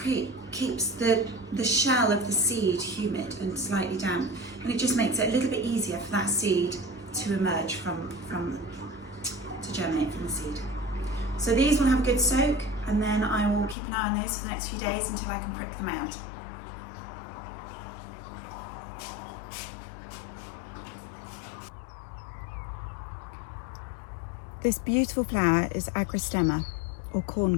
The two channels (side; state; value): right; drops out; at 13.8 s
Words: keeps the shell of the seed humid and slightly damp, and it just makes it a little bit easier for that seed to emerge to germinate from the seed. So these will have a good soak, and then I will keep an eye on those for the next few days until I can prick them out. This beautiful flower is agrostemma, or